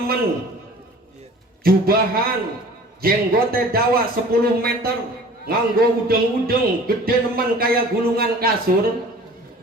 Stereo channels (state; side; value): normal; both; correlation 0.45